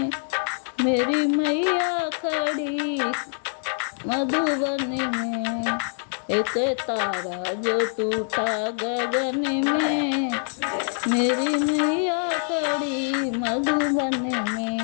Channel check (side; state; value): right; silent; digital silence